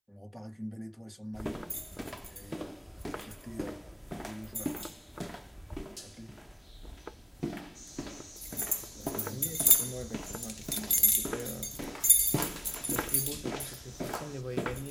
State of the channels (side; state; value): both; identical; correlation 1.00